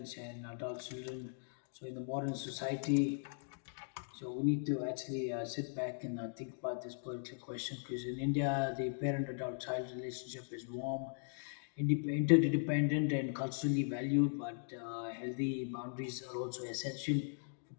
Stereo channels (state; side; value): silent; right; digital silence